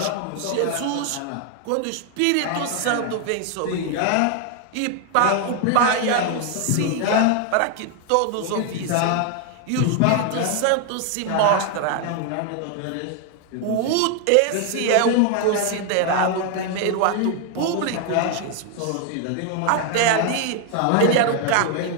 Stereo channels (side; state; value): both; different; correlation 0.01